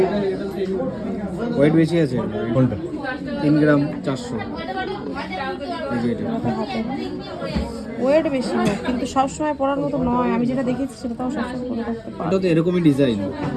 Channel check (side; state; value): both; identical; correlation 1.00